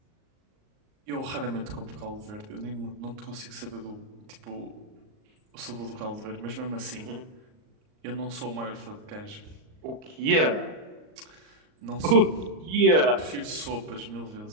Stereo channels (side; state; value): left; late; 38 ms